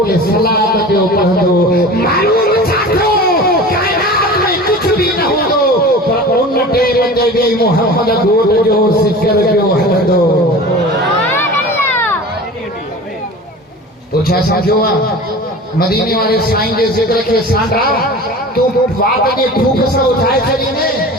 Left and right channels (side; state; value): both; normal; correlation 0.37